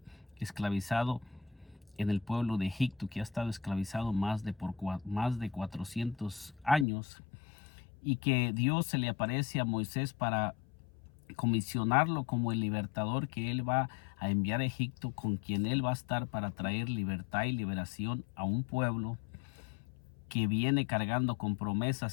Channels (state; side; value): drops out; right; at 6.9 s